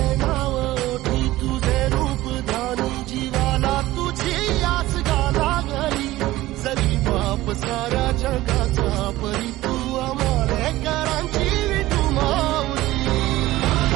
नाव ओठी तुझे रूप ध्यानी जीवाला तुझी आस गा लागली जरी बाप साऱ्या जगाचा परी तू आमालेकरांची विठू माऊली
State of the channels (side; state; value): left; quieter; 16.9 dB